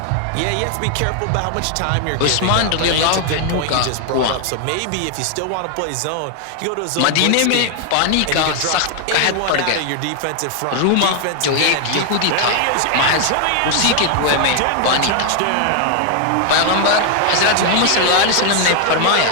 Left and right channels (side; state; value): both; different; correlation 0.00